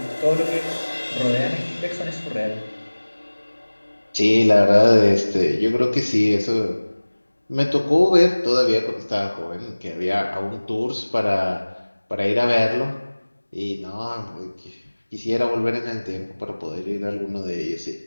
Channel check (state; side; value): inverted; both; correlation -1.00